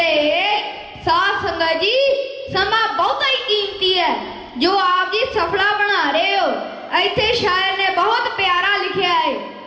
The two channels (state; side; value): identical; both; correlation 1.00